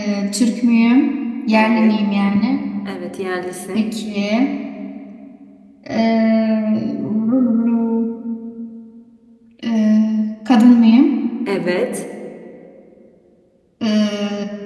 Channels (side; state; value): both; identical; correlation 1.00